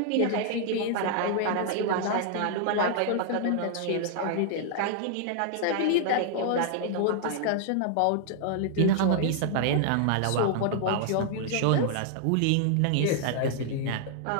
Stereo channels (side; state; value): both; different; correlation -0.01